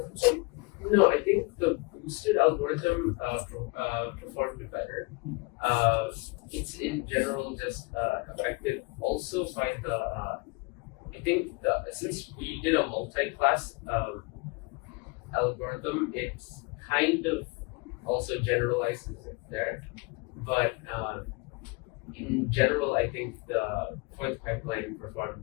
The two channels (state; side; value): quieter; right; 27.8 dB